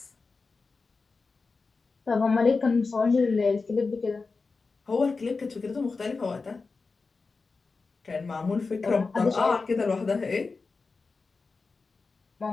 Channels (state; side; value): quieter; right; 4.2 dB